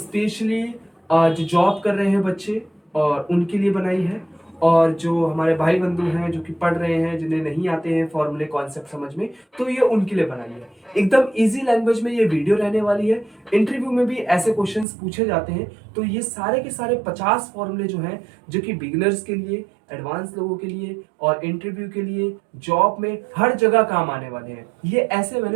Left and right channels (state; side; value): drops out; left; at 14.9 s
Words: जो जॉब कर रहे हैं बच्चे और उनके लिए बनाई है, और जो हमारे भाई बंधु हैं जो कि पढ़ रहे हैं, जिन्हें नहीं आते हैं फॉर्मूले कॉन्सेप्ट समझ में, तो ये उनके लिए बनाई है। एकदम इजी लैंग्वेज में ये वीडियो रहने वाली है। इंटरव्यू में भी ऐसे क्वेश्चंस पूछे जाते हैं, तो ये सारे के सारे 50 फॉर्मूले जो हैं, जो कि बिगिनर्स के लिए, एडवांस लोगों के लिए और इंटरव्यू के लिए, जॉब में हर जगह काम आने वाले हैं। ये ऐसे